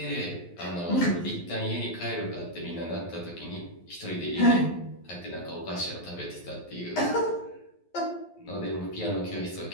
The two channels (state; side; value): late; right; 11 ms